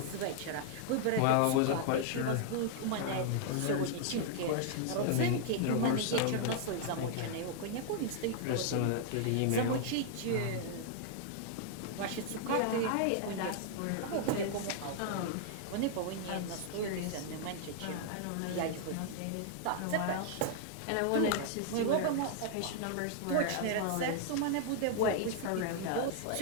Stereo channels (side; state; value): both; different; correlation -0.01